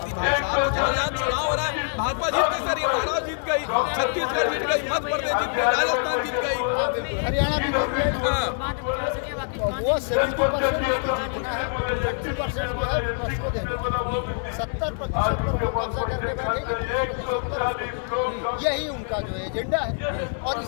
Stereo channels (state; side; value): silent; right; 62 dB below the other